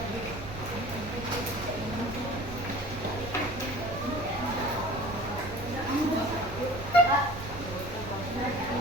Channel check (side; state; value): right; noise; rumble, 10 dB below the sound